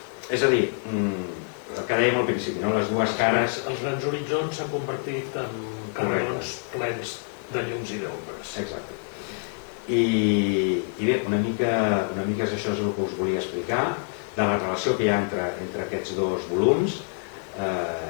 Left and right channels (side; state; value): right; silent; 55 dB below the other